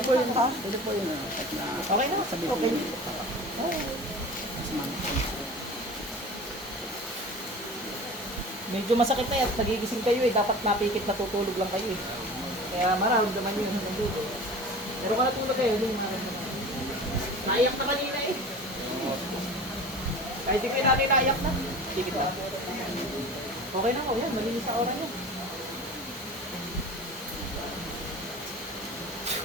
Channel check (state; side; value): normal; both; correlation 0.37